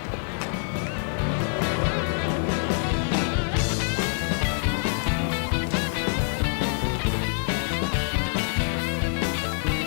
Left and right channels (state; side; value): silent; right; digital silence